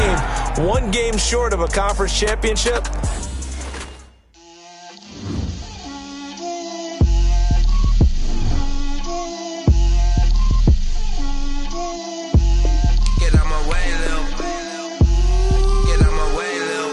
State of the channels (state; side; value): identical; both; correlation 1.00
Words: one game short of a conference championship.